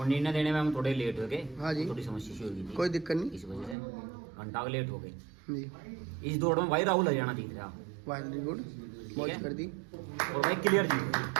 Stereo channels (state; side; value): drops out; left; at 3.8 s